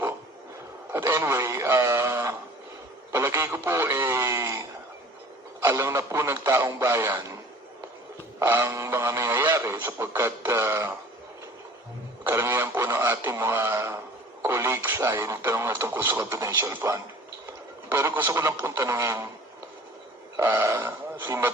At anyway, palagay ko po alam na po ng taong bayan ang mga nangyayari sapagkat karamihan po ng ating mga colleagues ay nagtanong na tungkol sa confidential fund. Pero gusto ko lang pong tanungin si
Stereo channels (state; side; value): normal; both; correlation 0.47